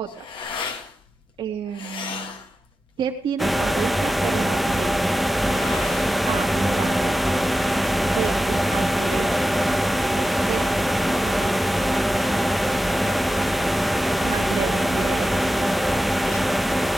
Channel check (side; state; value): both; normal; correlation 0.92